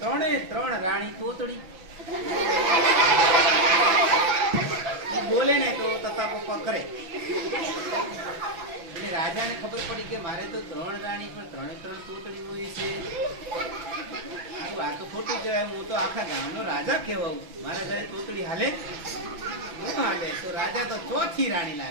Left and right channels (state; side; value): late; left; 6.1 ms